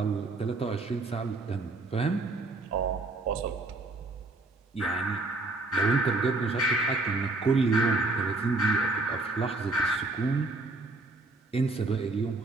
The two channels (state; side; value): quieter; left; 3.2 dB